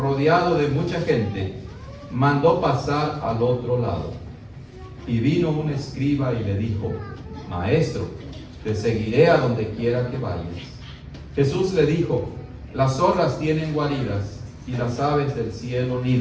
de mucha gente, mandó pasar al otro lado. Y vino un escriba y le dijo: Maestro, te seguiré a donde quiera que vayas. Jesús le dijo: las zorras tienen guaridas y las aves del cielo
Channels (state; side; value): identical; both; correlation 1.00